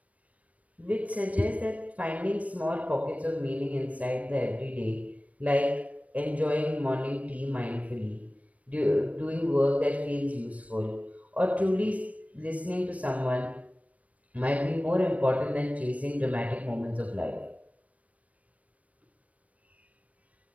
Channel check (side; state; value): left; late; 0.067 ms